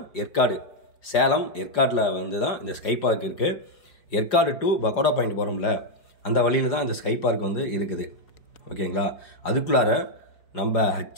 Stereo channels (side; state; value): right; late; 5.0 ms